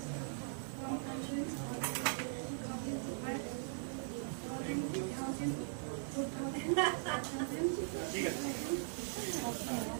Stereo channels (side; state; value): left; silent; digital silence